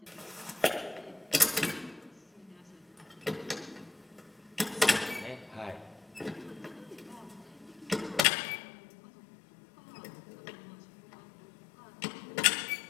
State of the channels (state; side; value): drops out; right; at 8.2 s